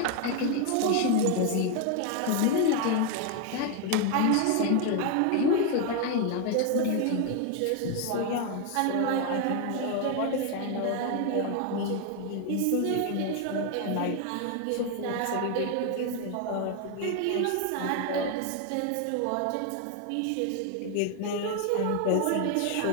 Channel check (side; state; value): both; different; correlation 0.01